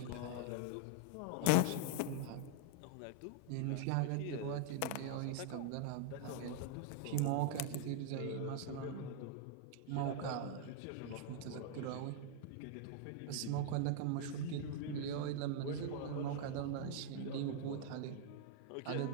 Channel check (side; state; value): both; different; correlation -0.01